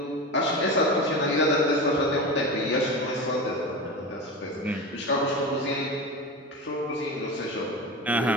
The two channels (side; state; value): both; normal; correlation 0.25